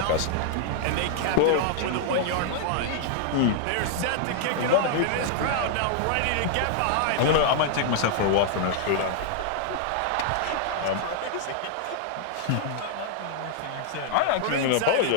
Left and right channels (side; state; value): both; different; correlation -0.01